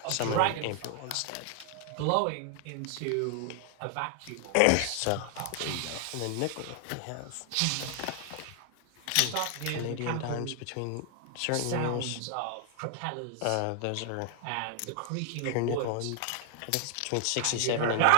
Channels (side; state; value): both; different; correlation 0.00